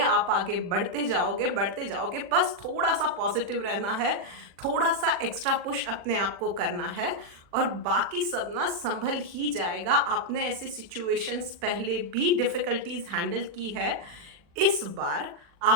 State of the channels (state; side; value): late; left; 40 ms